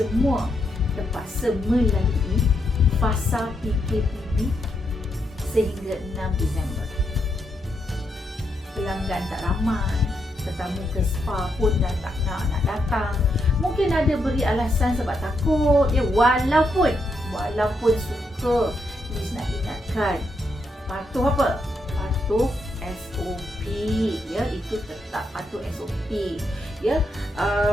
terpaksa melalui fasa PKPB sehingga 6 Disember. Pelanggan tak ramai, tetamu ke spa pun dah tak nak datang. Mungkin ada beri alasan sebab takut ya. Walaupun suka, Liz nak ingatkan, patuh apa? Patuh SOP ya, itu tetap patuh SOP ya.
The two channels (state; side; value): normal; both; correlation 0.80